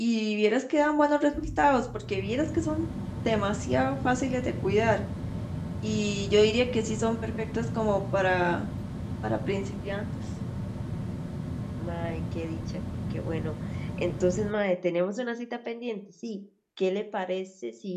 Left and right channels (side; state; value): both; identical; correlation 1.00